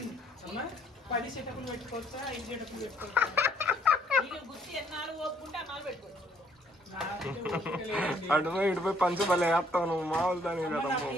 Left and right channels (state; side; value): normal; both; correlation 0.65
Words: 10 సెటప్లు పెట్టుకోవచ్చా? 5 సెటప్లు పెట్టుకోవచ్చా? ఇటుపోయి పంచబలే వేస్తావు నువ్వు, మామూలు దాని కదా.